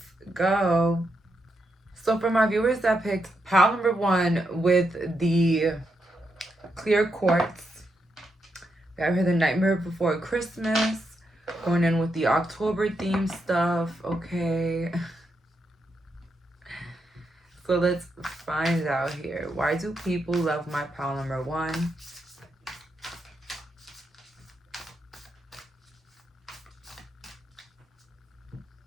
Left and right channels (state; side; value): normal; both; correlation 0.82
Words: go. So for my viewers that picked pile number 1 with the clear quartz, we have here the Nightmare Before Christmas, going in with the October theme stuff, okay? So let's find out here. Why do people love my pile number 1?